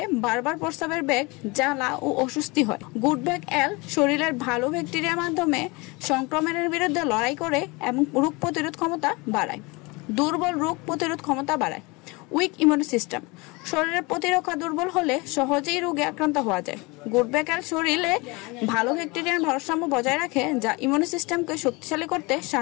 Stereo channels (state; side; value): quieter; right; 25.9 dB